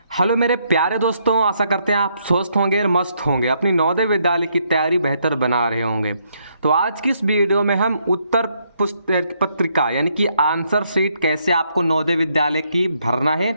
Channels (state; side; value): inverted; both; correlation -0.73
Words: Hello मेरे प्यारे दोस्तों, आशा करते हैं आप स्वस्थ होंगे और मस्त होंगे, अपनी नवोदय विद्यालय की तैयारी बेहतर बना रहे होंगे। तो आज की इस वीडियो में हम उत्तर पत्रिका यानी कि आंसर शीट कैसे आपको नवोदय विद्यालय की भरना है